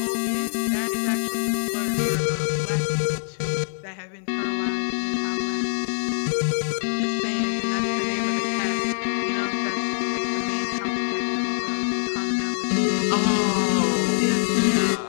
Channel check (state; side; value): silent; right; 62 dB below the other